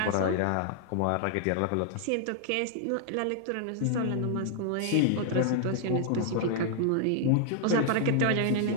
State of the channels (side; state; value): both; different; correlation -0.01